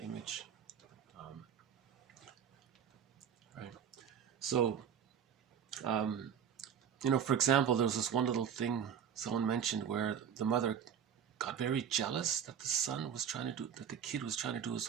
image. Right. So, for example, there was this one little thing someone mentioned where the mother got very jealous that the kid was trying to do his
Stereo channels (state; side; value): quieter; left; 8.3 dB